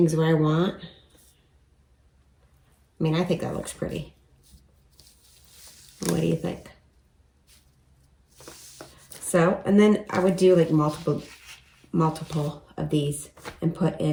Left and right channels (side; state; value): both; identical; correlation 1.00